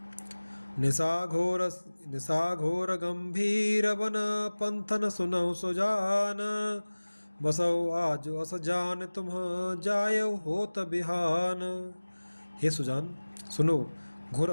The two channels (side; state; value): both; inverted; correlation -1.00